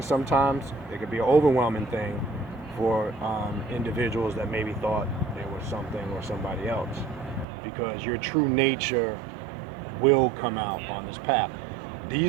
Sometimes it can be an overwhelming thing for individuals that maybe thought they were something or somebody else, because your true nature will come out on this path.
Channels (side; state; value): left; drops out; at 7.5 s